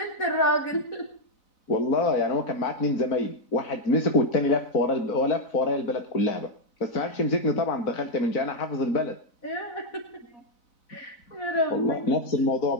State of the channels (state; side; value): late; right; 4.0 ms